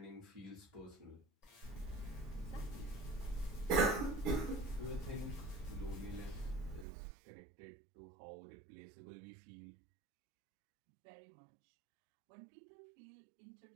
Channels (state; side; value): drops out; left; at 6.9 s